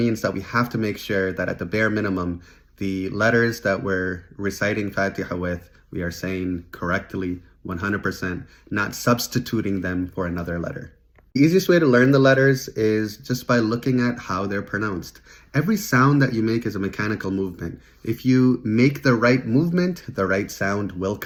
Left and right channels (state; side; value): identical; both; correlation 1.00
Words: that we have to make sure that at the bare minimum, the letters that we're reciting Fatiha with, we are saying correctly, 100%, not substituting them for another letter. The easiest way to learn the letters is just by looking at how they're pronounced. Every sound that you make is a mechanical movement. If you make the right movement, the right sound will